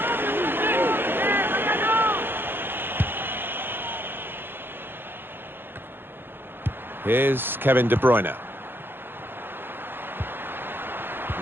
Here's Kevin De Bruyne.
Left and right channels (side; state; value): left; late; 0.10 ms